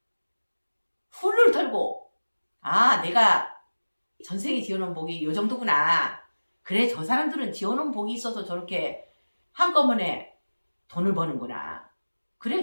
훌을 털고 내가 전생에 지어놓은 복이 요 정도구나. 그래, 저 사람들은 지어놓은 복이 있어서 저렇게 한꺼번에 돈을 버는구나. 그래,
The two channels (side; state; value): both; inverted; correlation -1.00